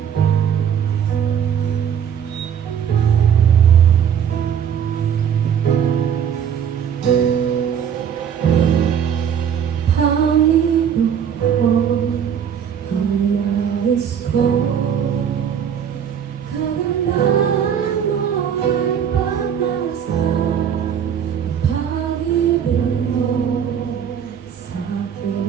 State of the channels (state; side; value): quieter; left; 8.3 dB